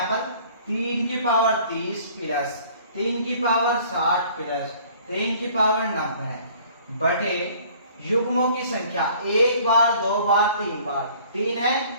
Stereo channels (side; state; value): both; inverted; correlation -0.54